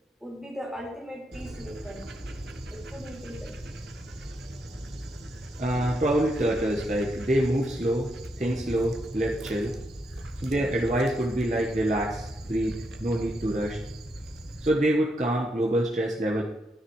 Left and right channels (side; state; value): both; normal; correlation 0.80